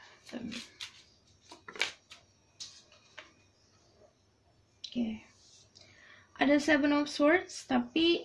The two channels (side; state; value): both; identical; correlation 1.00